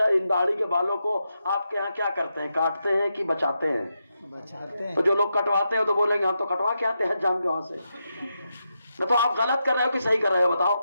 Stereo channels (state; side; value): inverted; both; correlation -0.86